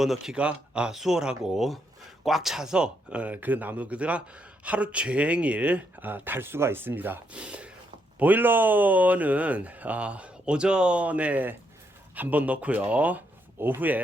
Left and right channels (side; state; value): both; normal; correlation 0.77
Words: 수월하고, 꽉 차서 그 나무가 하루 종일 달 수가 있습니다. 보일러는 오전에 한번 넣고요,